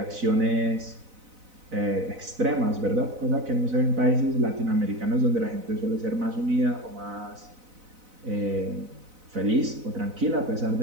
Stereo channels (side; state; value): left; late; 4.0 ms